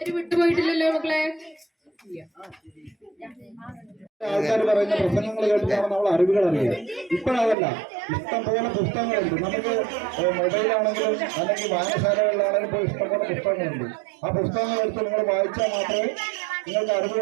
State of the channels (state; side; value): drops out; left; at 7.6 s